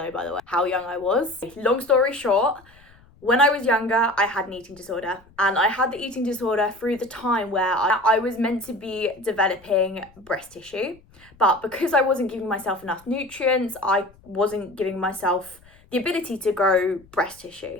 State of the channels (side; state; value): left; noise; rumble, 27 dB below the sound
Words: by the way, how young I was. Long story short, when I was younger, I had an eating disorder, and I had the eating disorder through the time where I was meant to be developing breast tissue, but because I wasn't giving myself enough nutrients, I wasn't giving myself the ability to grow breast